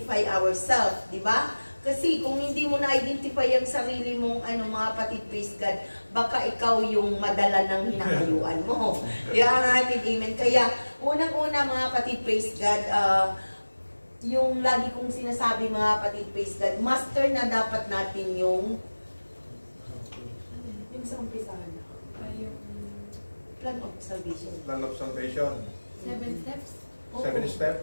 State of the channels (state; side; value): inverted; both; correlation -1.00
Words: ourselves, di ba? Kasi kung hindi mo na-identify ang sarili mong mga kapatid, praise God, baka ikaw yung madala ng hinahayuan mo. Kaya natin, amen. Kaya, unang-una mga kapatid, praise God, yung lagi kong sinasabi mga kapatid, praise God, master na dapat natin yung sa umpisahan na. Plan of salvation. Plan of salvation. 7 steps? 7